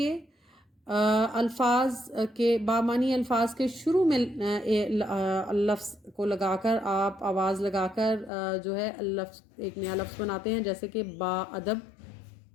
الفاظ کے بامانی الفاظ کے شروع میں لفظ کو لگا کر آپ آواز لگا کر جو ہے لفظ ایک نیا لفظ بناتے ہیں، جیسے کہ با ادب،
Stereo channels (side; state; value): right; drops out; at 8.3 s